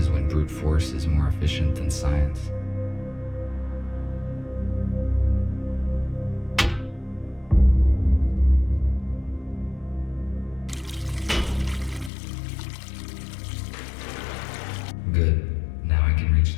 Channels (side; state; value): right; drops out; at 12.1 s